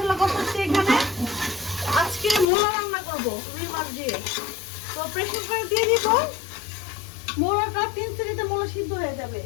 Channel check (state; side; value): drops out; right; at 2.5 s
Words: কষাচ্ছি। এখানে আজকে মোলা রান্না করবো রুই মাছ দিয়ে। তো প্রেসার কুকারে দিয়ে দিব মোলাটা, 3 সিটিতে মোলা সিদ্ধ হয়ে যাবে,